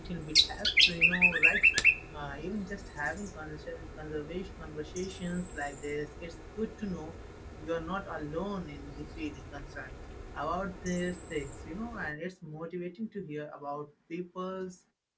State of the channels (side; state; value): both; identical; correlation 1.00